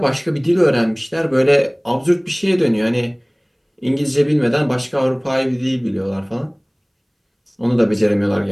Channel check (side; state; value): both; identical; correlation 1.00